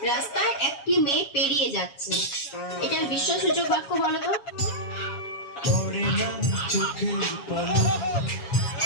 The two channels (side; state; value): right; late; 7.2 ms